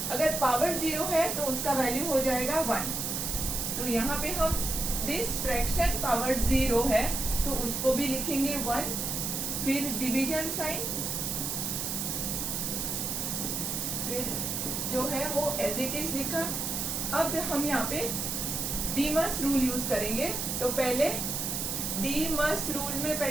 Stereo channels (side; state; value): right; noise; hiss, 2 dB below the sound